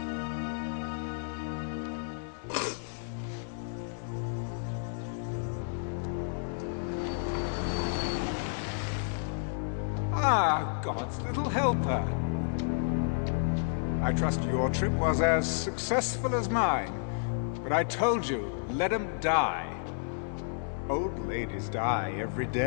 Ah, God's little helper. I trust your trip was as successful as mine. But I told you, let him die. Old ladies die every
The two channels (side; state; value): right; silent; digital silence